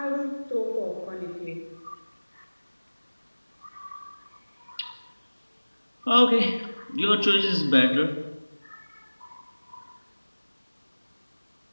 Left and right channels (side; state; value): both; inverted; correlation -1.00